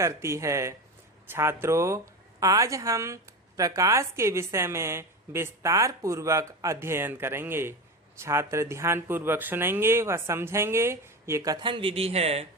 है। छात्रों, आज हम प्रकाश के विषय में विस्तार पूर्वक अध्ययन करेंगे। छात्र ध्यान पूर्वक सुनेंगे व समझेंगे। ये कथन विधि है।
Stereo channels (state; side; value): normal; both; correlation 0.23